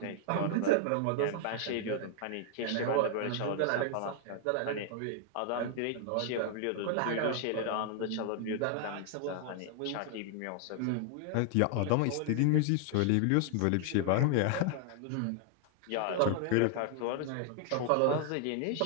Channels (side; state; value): both; different; correlation 0.00